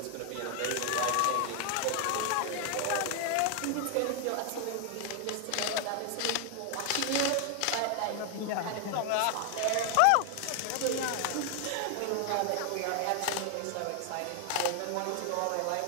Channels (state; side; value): different; both; correlation 0.00